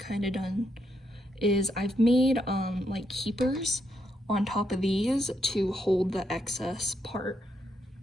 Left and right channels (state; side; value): normal; both; correlation 0.79